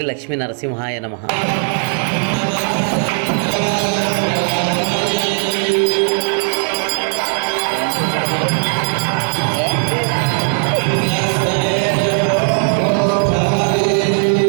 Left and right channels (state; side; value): silent; left; 58 dB below the other